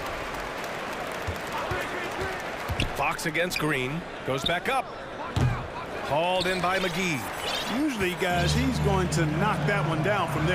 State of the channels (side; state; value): both; identical; correlation 1.00